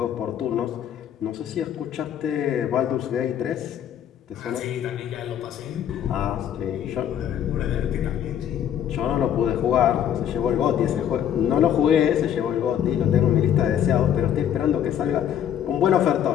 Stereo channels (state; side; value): quieter; right; 9.8 dB